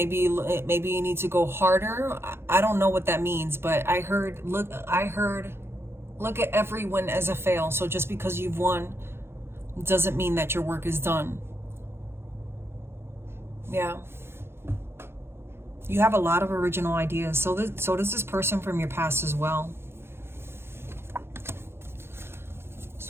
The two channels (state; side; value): late; left; 0.12 ms